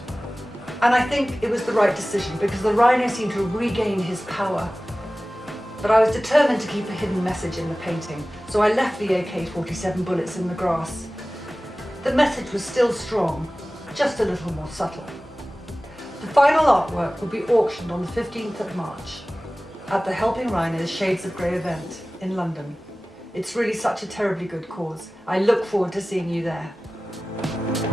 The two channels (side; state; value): both; normal; correlation 0.97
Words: and I think it was the right decision because the rhino seemed to regain his power. But I was determined to keep a hidden message in the painting, so I left the AK-47 bullets in the grass. The message was still strong, just a little more subtle. The final artwork will be auctioned on the 15th of March at the Helping Rhinos Shades of Grey event in London. It's really such a terribly good cause. I look forward to seeing you there.